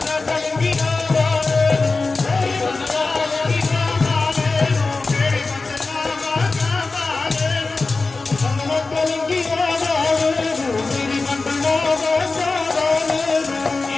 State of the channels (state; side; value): quieter; right; 3.8 dB